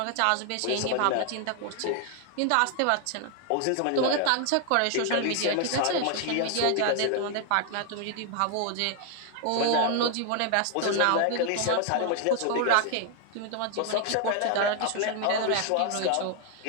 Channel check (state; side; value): different; both; correlation 0.00